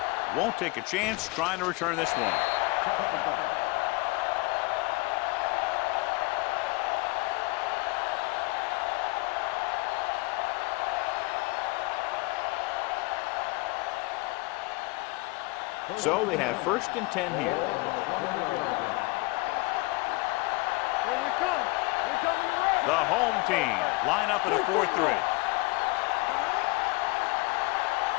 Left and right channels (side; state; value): right; quieter; 24.6 dB